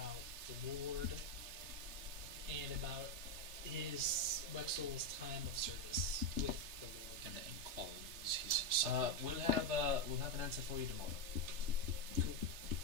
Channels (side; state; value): left; late; 3.3 ms